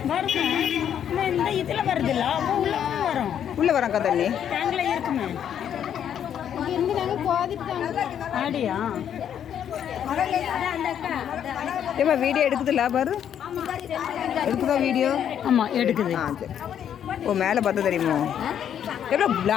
இந்த இதுல வருது இல்ல வரும் உள்ள வரக்கா தண்ணி டேங்க்ல இருக்குமே ஆடியா ஏமா வீடியோ எடுக்குதுல்ல பாரு எடுக்குதா வீடியோ ஆமாம் எடுக்குது ஆ சரி ஓ மேலே பார்த்தா தெரியுமோ எவ்வளோ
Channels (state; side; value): quieter; right; 9.3 dB